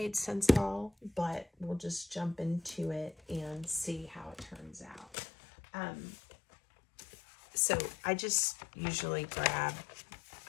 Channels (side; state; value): right; drops out; at 5.1 s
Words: sense at all, but we'll just jump into it and see how it turns out. So I just usually grab,